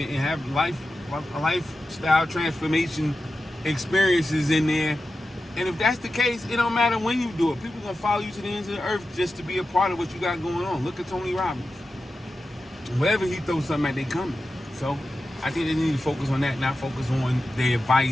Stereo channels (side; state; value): both; normal; correlation 0.92